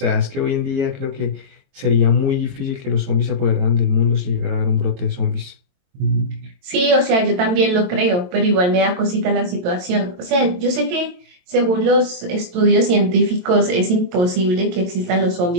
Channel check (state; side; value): late; left; 22 ms